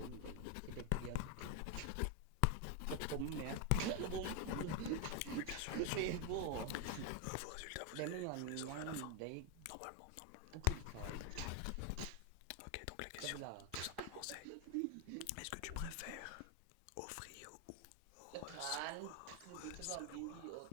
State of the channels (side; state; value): both; different; correlation 0.01